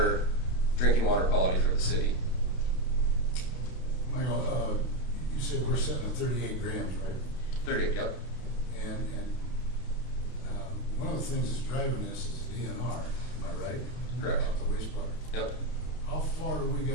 drinking water quality for the city. Michael, you said we're setting at 38 grams, right? 30, yep. And one of the things that's driving this is DNR, am I right? Correct. About the wastewater. Yep. How far do we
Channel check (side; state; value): right; late; 32 ms